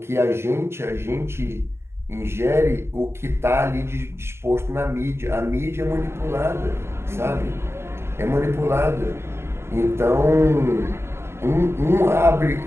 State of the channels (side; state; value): left; late; 0.12 ms